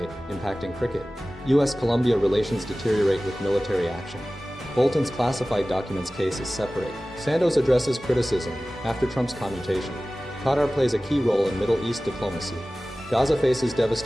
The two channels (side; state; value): both; normal; correlation 0.97